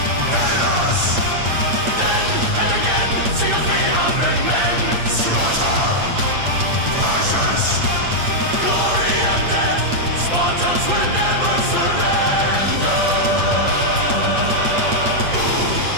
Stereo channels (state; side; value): late; left; 8.6 ms